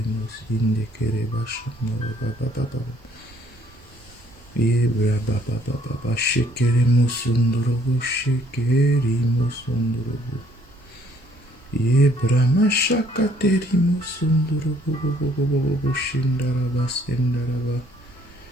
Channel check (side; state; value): both; normal; correlation 0.63